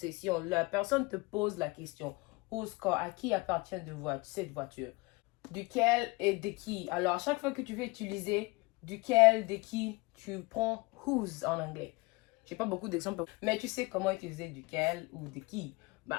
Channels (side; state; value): right; quieter; 25.3 dB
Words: La personne te pose la question. Whose car, à qui appartient cette voiture? Duquel et de qui? Alors, à chaque fois que tu veux utiliser duquel, de qui, tu prends whose en anglais. J'ai pas beaucoup d'exemples, mais tu sais comment utiliser duquel ou de qui.